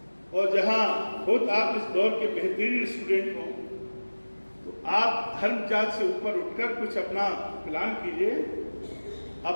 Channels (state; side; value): inverted; both; correlation -1.00